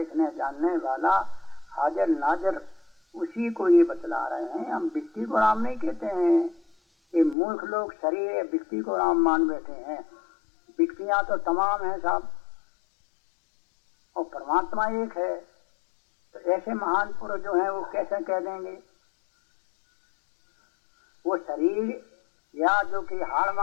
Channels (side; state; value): right; drops out; at 7.4 s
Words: जानने वाला हाजिर नाजिर, उसी को ये बतला रहे हैं। हम व्यक्ति को राम नहीं कहते हैं। ये मूर्ख लोग शरीर व्यक्ति को राम मान बैठे हैं। व्यक्तियां तो तमाम हैं साहब, और परमात्मा एक है। तो ऐसे महान पुरुष जो हैं वो कैसे कह देंगे वो शरीर या जो कि हाड़